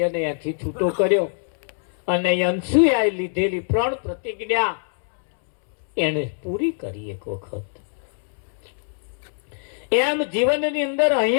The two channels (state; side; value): silent; right; 63 dB below the other